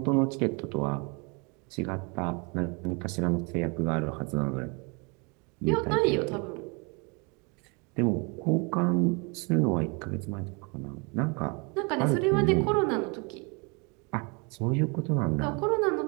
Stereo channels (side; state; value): left; quieter; 31.4 dB